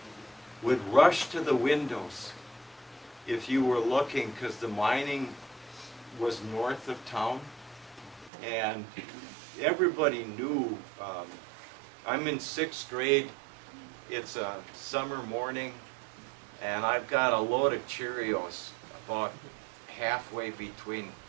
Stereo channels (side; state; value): left; drops out; at 8.3 s